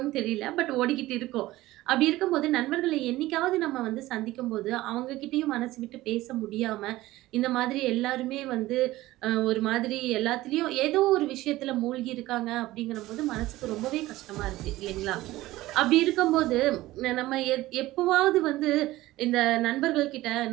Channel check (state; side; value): quieter; left; 17.2 dB